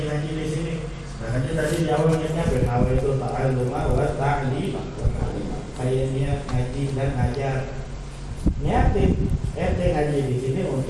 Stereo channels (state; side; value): identical; both; correlation 1.00